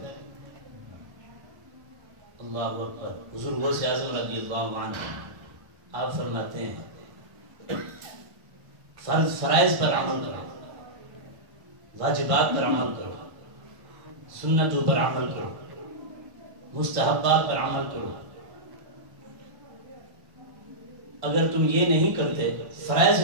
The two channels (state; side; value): late; left; 1.5 ms